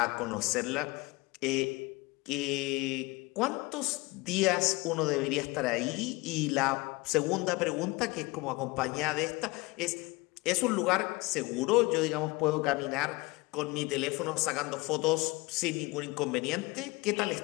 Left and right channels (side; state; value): right; quieter; 23.5 dB